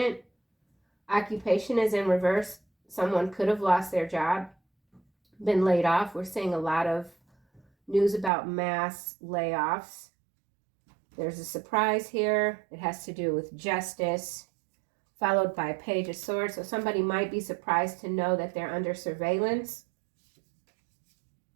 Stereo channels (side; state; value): left; drops out; at 8.3 s